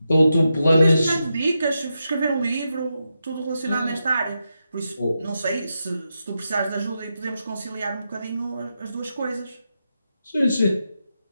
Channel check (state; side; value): inverted; both; correlation -0.87